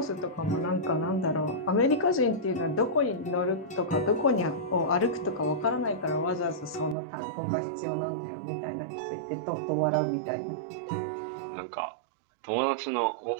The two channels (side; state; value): left; drops out; at 7.0 s